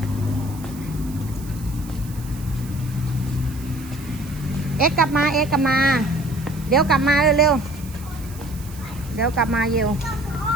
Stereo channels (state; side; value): noise; right; hiss, 19 dB below the sound